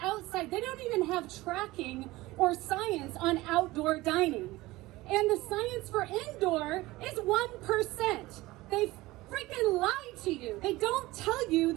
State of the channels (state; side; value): quieter; left; 19.2 dB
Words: outside. They don't even have tracking or science on outdoor dining. And the science for indoor is 1%. They freaking lie to you. They don't tell you